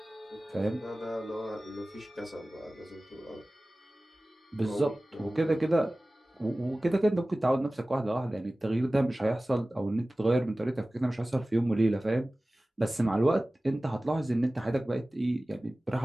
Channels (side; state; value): both; normal; correlation 0.97